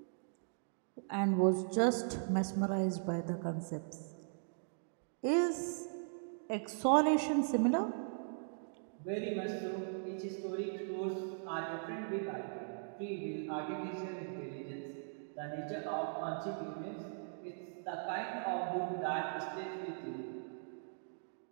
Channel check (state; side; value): silent; left; digital silence